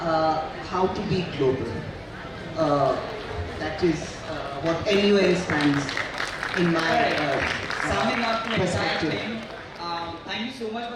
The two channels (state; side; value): identical; both; correlation 1.00